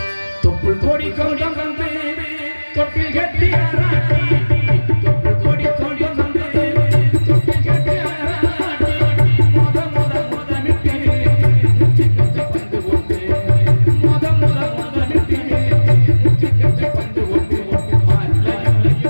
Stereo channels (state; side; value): inverted; both; correlation -1.00